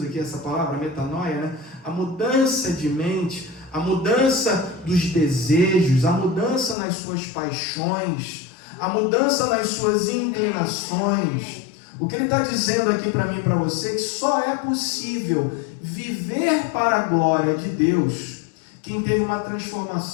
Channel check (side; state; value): right; drops out; at 6.8 s